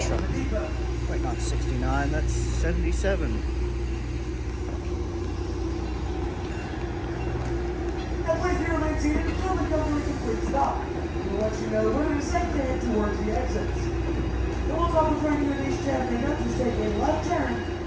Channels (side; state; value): both; identical; correlation 1.00